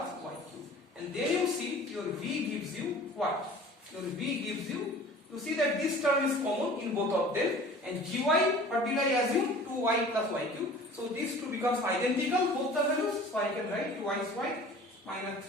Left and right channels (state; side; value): normal; both; correlation 0.44